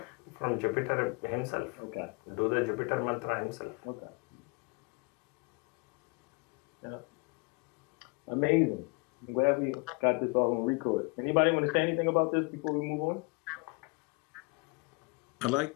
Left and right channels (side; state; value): right; quieter; 30.6 dB